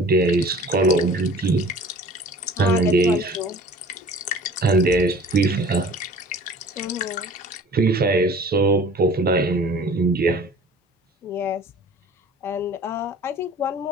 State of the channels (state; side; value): normal; both; correlation 0.46